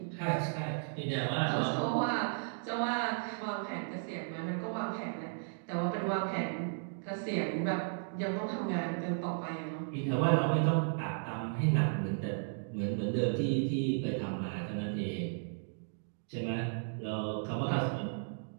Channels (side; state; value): left; silent; digital silence